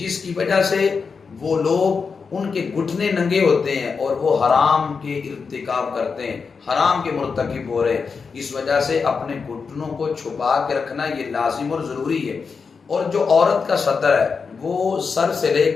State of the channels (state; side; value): quieter; right; 5.3 dB